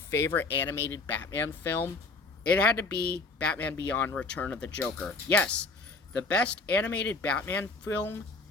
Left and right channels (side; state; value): right; quieter; 3.7 dB